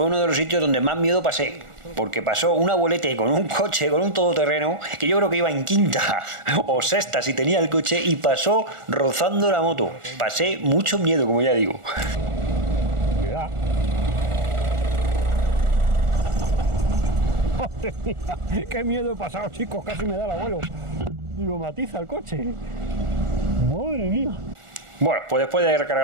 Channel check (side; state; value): left; late; 1.4 ms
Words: uno de los sitios donde más miedo pasé, porque pasó un abuelete con un coche, con un todoterreno, que yo creo que iba en quinta o sexta si tenía el coche, y pasó rozando la moto. Pasé mucho miedo, como ya digo. Cuidado. ¡Madre mía! ¡Qué miedo he pasado, chicos! Casi me da el abuelo. Y lo matiza el coche. ¡Madre mía! Bueno, pues después de recargar